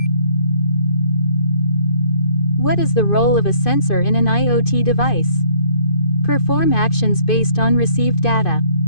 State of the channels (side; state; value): right; late; 2.5 ms